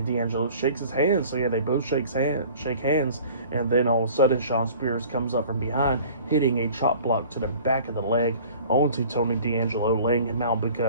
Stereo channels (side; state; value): both; inverted; correlation -0.47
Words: D'Angelo shakes his hand. So yeah, they both shake hands, and then all of a sudden Shawn Spears comes up from behind, hitting a chop block to the back of the leg onto Tony D'Angelo, laying him out